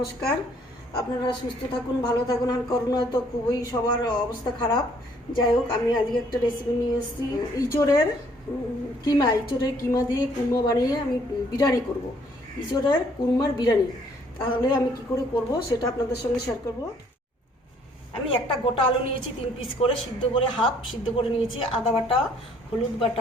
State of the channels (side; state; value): both; normal; correlation 0.63